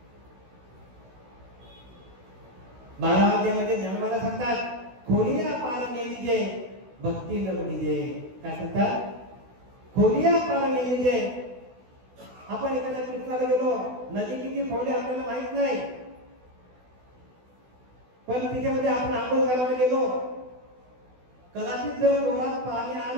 12 अध्यायामध्ये ज्ञानोबाला सांगतात खोलिया पार नेलीजे भक्ती न बुडीजे. काय सांगतात? खोलिया पार नेलीजे. आपण एखाद्या तीर्थाला गेलो, नदी किती खोल आहे आपल्याला माहित नाही, पण तिच्यामध्ये आपण आंघोळ करायला गेलो, कदाचित जर डोळ्यात पाणी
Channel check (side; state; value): left; late; 16 ms